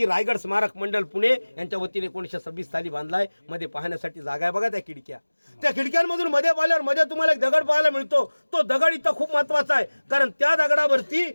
रायगड स्मारक मंडळ पुणे यांच्या वतीने 1926 साली बांधलाय. मध्ये पाहण्यासाठी जागा आहे बघा, त्या खिडक्यांमधून मध्ये पाहिल्यावर मध्ये तुम्हाला एक दगड पाहायला मिळतो. तो दगड इथं खूप महत्वाचा आहे, कारण त्या दगडावरती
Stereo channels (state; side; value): inverted; both; correlation -1.00